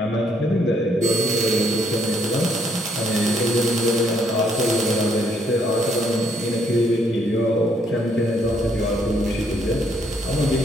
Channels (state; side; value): normal; both; correlation 0.69